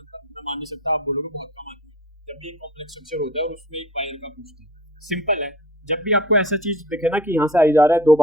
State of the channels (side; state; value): both; normal; correlation 0.41